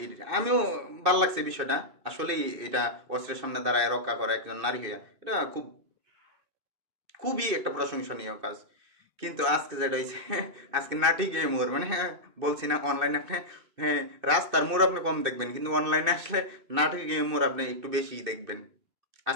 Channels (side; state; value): left; late; 2.6 ms